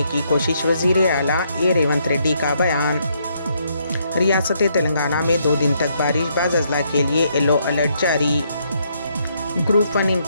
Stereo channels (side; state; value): both; inverted; correlation -0.73